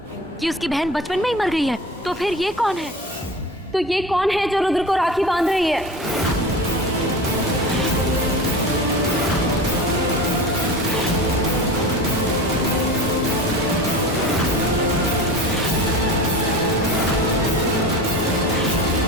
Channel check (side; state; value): both; normal; correlation 0.33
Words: कि उसकी बहन बचपन में ही मर गई है? तो फिर ये कौन है? तो ये कौन है जो रुद्र को राखी बांध रही है?